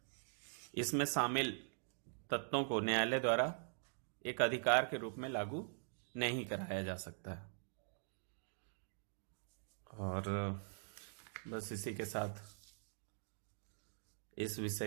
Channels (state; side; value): silent; left; digital silence